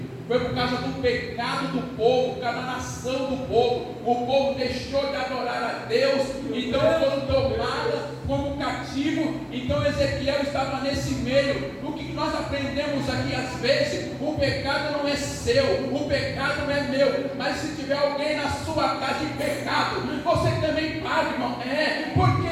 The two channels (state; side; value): identical; both; correlation 1.00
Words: Foi por causa do pecado do povo, por causa da nação do povo. O povo deixou de adorar a Deus, então foram tomados como cativo. Então Ezequiel estava nesse meio. O que nós aprendemos aqui às vezes, o pecado não é seu, o pecado não é meu. Mas se tiver alguém na sua casa em pecado, você também paga, irmão. Por